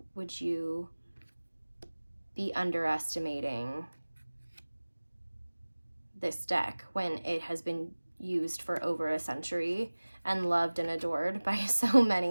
would you be underestimating this deck when it has been used for over a century and loved and adored by so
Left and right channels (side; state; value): both; inverted; correlation -1.00